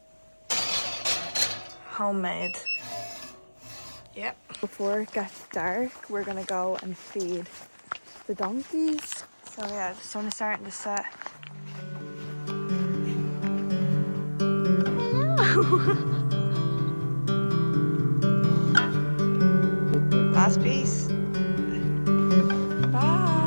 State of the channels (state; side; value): inverted; both; correlation -1.00